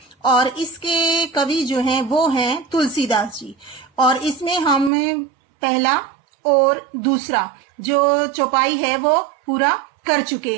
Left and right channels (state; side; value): drops out; left; at 4.9 s